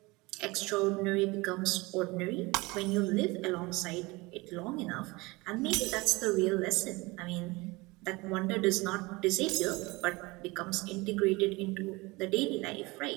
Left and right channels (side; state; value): left; quieter; 23.6 dB